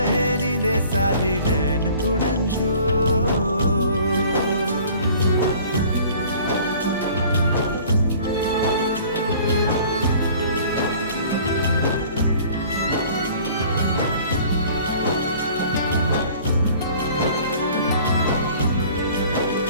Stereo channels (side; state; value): both; inverted; correlation -0.49